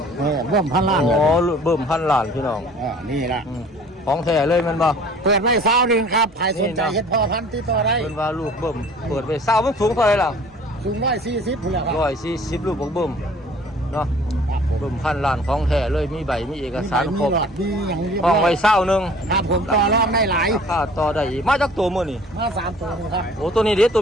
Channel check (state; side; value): normal; both; correlation 0.50